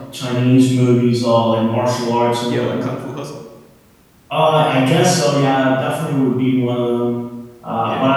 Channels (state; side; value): identical; both; correlation 1.00